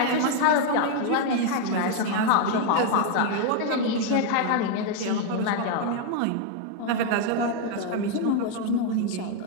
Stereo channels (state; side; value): different; both; correlation 0.00